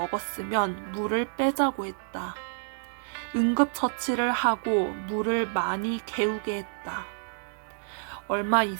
물을 빼자고 했다. 응급처치를 하고 물을 많이 개우게 했다. 얼마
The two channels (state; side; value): silent; left; digital silence